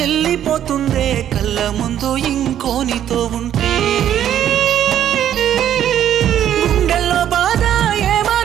వెళ్ళిపోతుందే కళ్ళ ముందు ఇంకోనితో ఉంటే. గుండెల్లో బాధ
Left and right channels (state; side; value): quieter; left; 10.6 dB